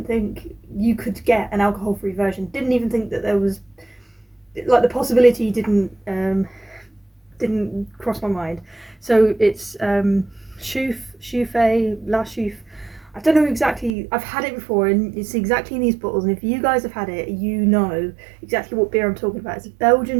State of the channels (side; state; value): left; drops out; at 14.0 s